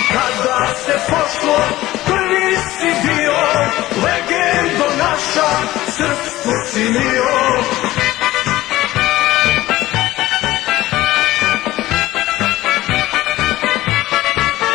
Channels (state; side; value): quieter; right; 16.6 dB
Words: Kada se pošlo, prvi si bio, legendo naša, srpstvo si mio.